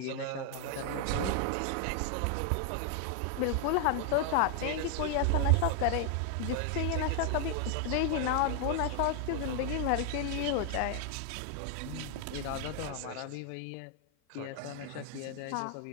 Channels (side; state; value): both; different; correlation 0.00